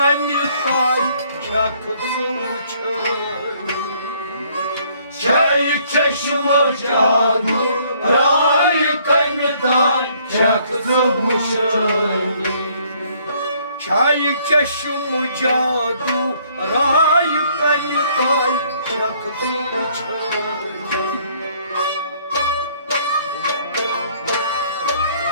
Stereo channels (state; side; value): inverted; both; correlation -0.63